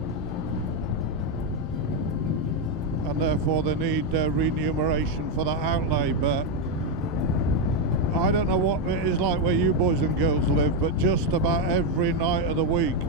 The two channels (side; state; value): both; normal; correlation 0.05